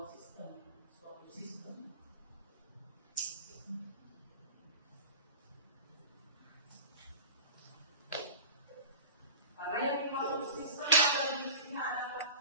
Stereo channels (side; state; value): both; inverted; correlation -0.35